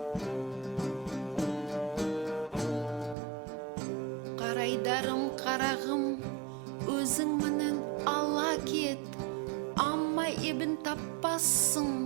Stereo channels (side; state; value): left; drops out; at 3.2 s